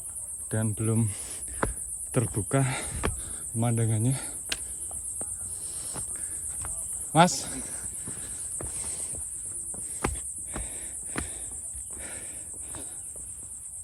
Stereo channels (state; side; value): identical; both; correlation 1.00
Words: dan belum terbuka pemandangannya. Mas,